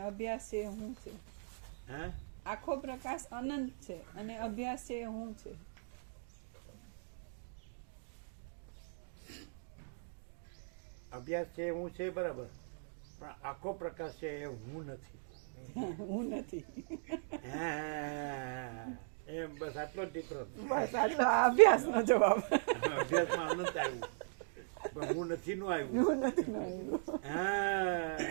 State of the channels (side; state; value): left; silent; digital silence